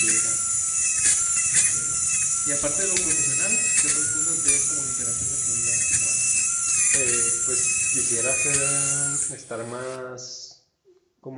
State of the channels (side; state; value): both; identical; correlation 1.00